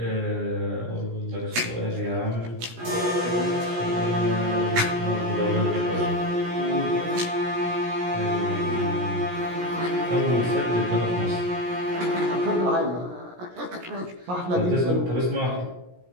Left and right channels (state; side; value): late; left; 17 ms